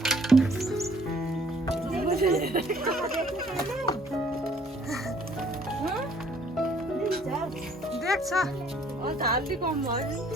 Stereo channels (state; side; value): normal; both; correlation 0.60